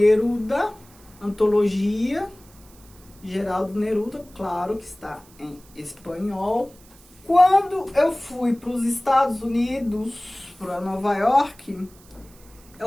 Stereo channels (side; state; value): right; noise; hiss, 26 dB below the sound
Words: Antologia, Geraldo Neruda, claro que está em espanhol. Quando eu fui para os Estados Unidos, para Nova York,